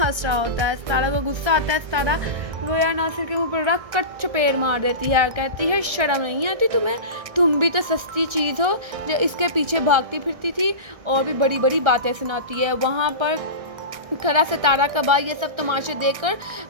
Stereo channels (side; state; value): left; late; 1.6 ms